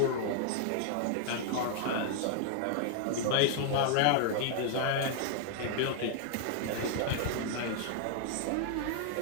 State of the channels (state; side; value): different; both; correlation -0.01